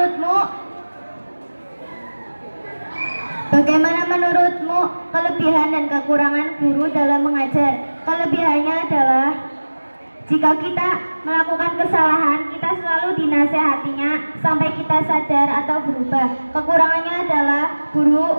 Bagaimana menurutmu kelebihan dan kekurangan guru dalam mengajar? Kelebihannya adalah jika kita melakukan kesalahan, kita selalu dinasehatinya sampai kita sadar atau berubah. Kekurangannya adalah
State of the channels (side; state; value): both; inverted; correlation -1.00